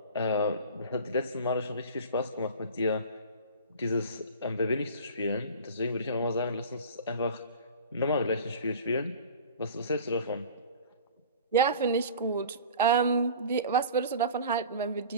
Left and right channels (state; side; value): inverted; both; correlation -0.39